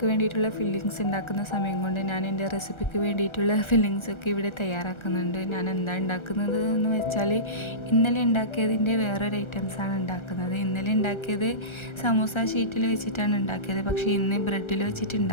വേണ്ടിയിട്ടുള്ള ഫില്ലിങ്സ് ഉണ്ടാക്കുന്ന സമയം കൊണ്ട് ഞാൻ എൻ്റെ റെസിപ്പിക്ക് വേണ്ടിയിട്ടുള്ള ഫില്ലിങ്സൊക്കെ ഇവിടെ തയ്യാറാക്കുന്നുണ്ട്. ഞാൻ എന്താ ഉണ്ടാക്കുന്നത് എന്ന് വെച്ചാൽ ഇന്നലെ ഉണ്ടാക്കിയതിൻ്റെ വേറൊരു ഐറ്റംസാണ് ഉണ്ടാക്കുന്നത്. ഇന്നലെ ഉണ്ടാക്കിയത് സമൂസ ഷീറ്റിൽ വെച്ചിട്ടാണ് ഉണ്ടാക്കിയത്. പക്ഷേ ഇന്ന് ബ്രെഡിൽ വെച്ചിട്ട്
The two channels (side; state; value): right; late; 1.3 ms